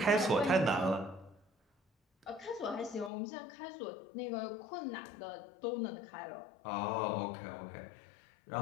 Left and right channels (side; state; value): right; drops out; at 3.1 s